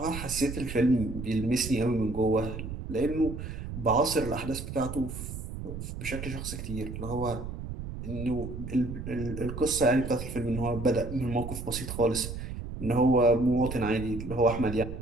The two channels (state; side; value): noise; right; rumble, 8 dB below the sound